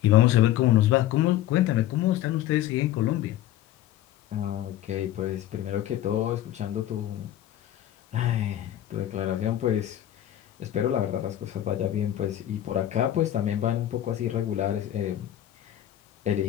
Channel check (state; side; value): quieter; right; 12.7 dB